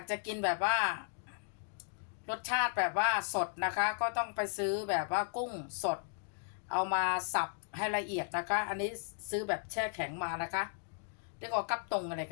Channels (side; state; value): right; silent; digital silence